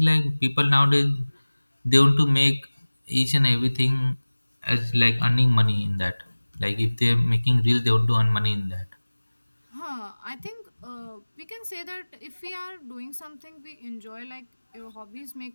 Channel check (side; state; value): both; inverted; correlation -1.00